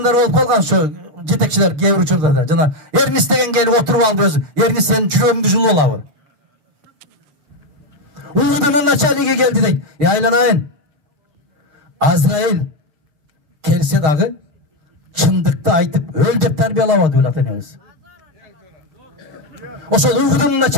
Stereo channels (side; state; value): left; late; 6.5 ms